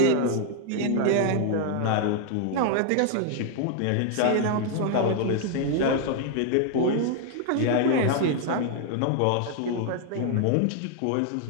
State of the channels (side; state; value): both; different; correlation 0.00